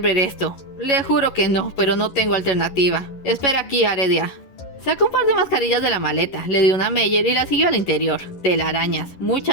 ver esto». «Le juro que no, pero no tengo alternativa. Espera aquí, Aredia». Sacó un par de mascarillas de la maleta, le dio una a Meyer y la siguió al interior. Telarañas,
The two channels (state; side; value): late; right; 11 ms